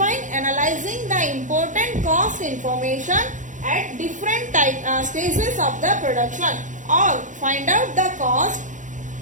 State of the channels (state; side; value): late; left; 0.37 ms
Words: analyzing the important cost information at different stages of the production, or find out the cost